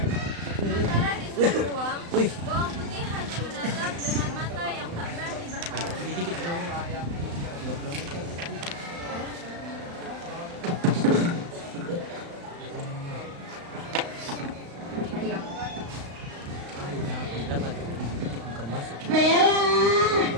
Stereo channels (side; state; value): left; late; 35 ms